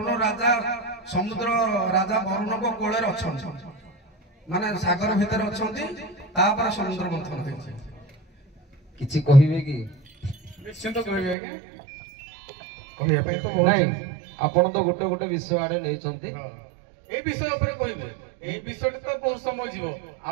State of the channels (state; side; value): drops out; left; at 11.4 s